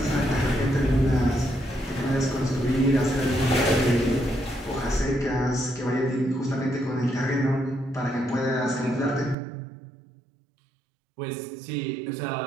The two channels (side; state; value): left; drops out; at 9.3 s